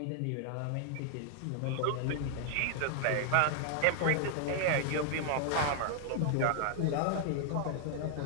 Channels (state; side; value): different; both; correlation 0.00